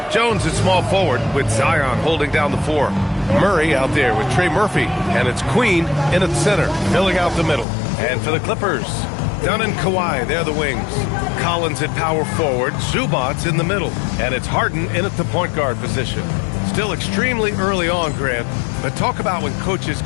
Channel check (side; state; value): right; drops out; at 7.7 s